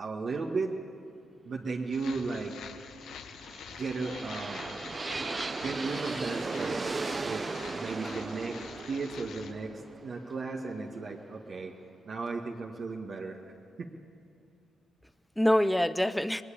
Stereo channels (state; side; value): normal; both; correlation 0.93